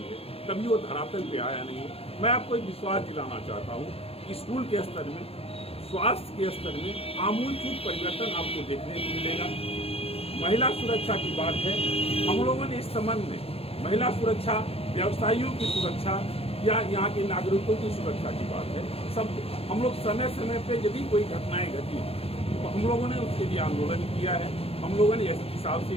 है, कभी वो धरातल पे आया नहीं है। मैं आपको एक विश्वास दिलाना चाहता हूँ, स्कूल के स्तर में, स्वास्थ्य के स्तर में आमूलचूल परिवर्तन आपको देखने को मिलेगा। महिला सुरक्षा की बात है, हम लोगों ने इस संबंध में महिला सुरक्षा, व्यवसायियों की सुरक्षा या यहाँ के नागरिकों की सुरक्षा की बात है, सब हम लोग समय समय पे यदि कोई घटनाएं घटी तो हम लोगों ने उसके लिए आंदोलन किया है। हम लोगों ने एसपी साहब से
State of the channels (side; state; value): right; late; 0.28 ms